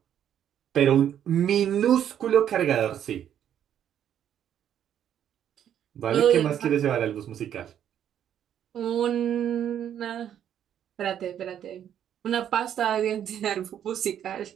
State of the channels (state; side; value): quieter; left; 9.9 dB